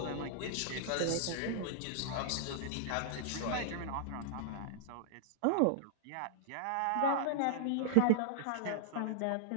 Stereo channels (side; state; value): both; different; correlation -0.01